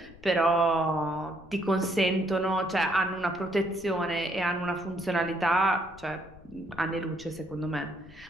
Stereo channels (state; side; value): noise; left; rumble, 22 dB below the sound